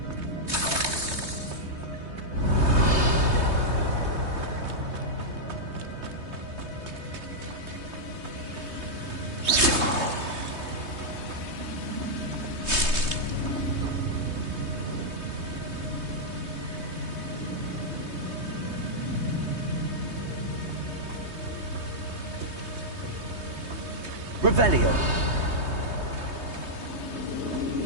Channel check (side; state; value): left; late; 3.2 ms